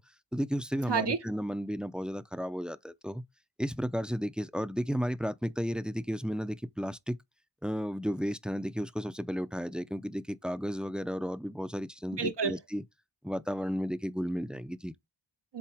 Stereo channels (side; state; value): both; normal; correlation 0.82